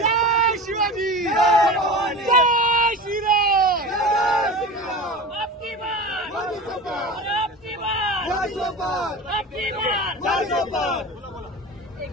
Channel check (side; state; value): both; normal; correlation 0.32